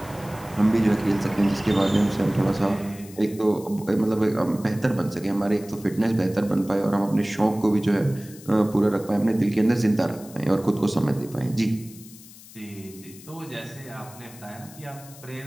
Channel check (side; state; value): left; noise; hiss, 20 dB below the sound